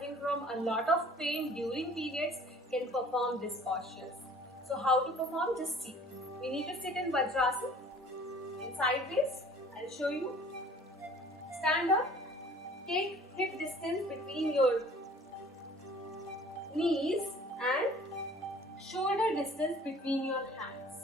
from a lot of pain during periods can perform this postures. So how to perform? Just see. We need to sit in Bhagyashree in sideways. I'll show you. Stand up. Take hip distance between your knees and shoulder distance between your hands.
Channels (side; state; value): both; normal; correlation 0.51